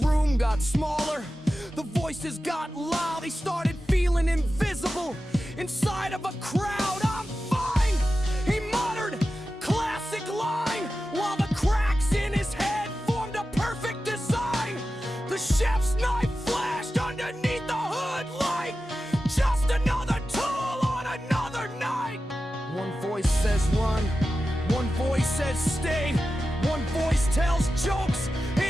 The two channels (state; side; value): normal; both; correlation 0.93